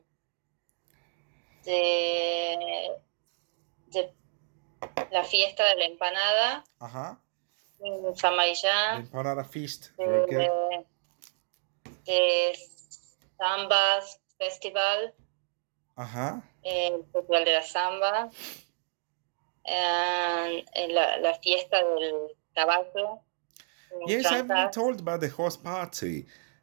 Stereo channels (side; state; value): left; silent; digital silence